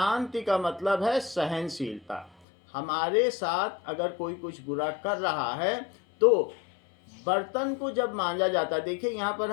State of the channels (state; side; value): drops out; right; at 2.3 s